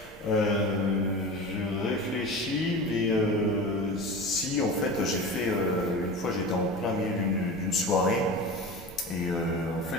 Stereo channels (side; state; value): both; normal; correlation 0.31